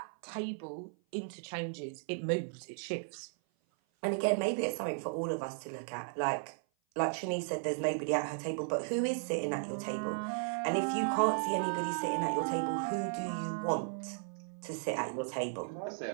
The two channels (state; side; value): silent; left; 54 dB below the other